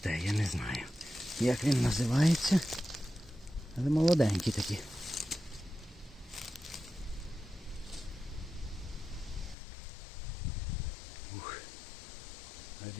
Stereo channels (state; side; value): drops out; right; at 9.6 s